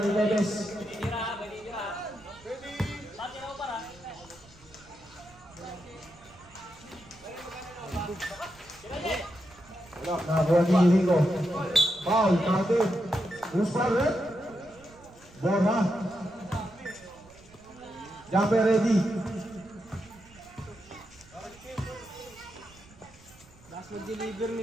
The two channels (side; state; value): right; noise; rumble, 24 dB below the sound